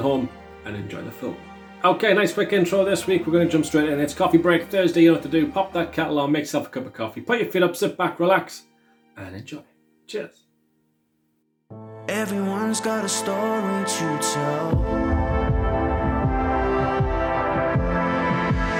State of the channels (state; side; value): identical; both; correlation 1.00